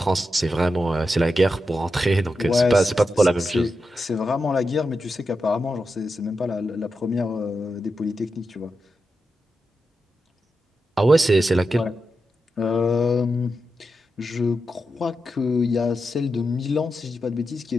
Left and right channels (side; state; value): both; normal; correlation 0.88